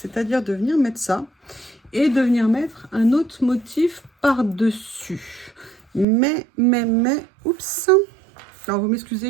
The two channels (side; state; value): left; drops out; at 6.1 s